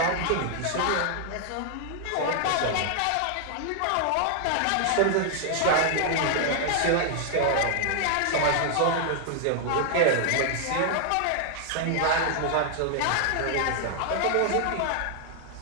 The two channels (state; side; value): different; both; correlation 0.00